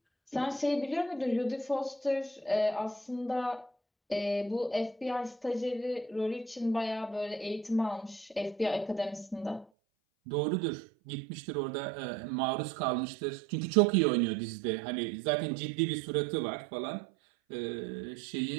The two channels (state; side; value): drops out; left; at 9.7 s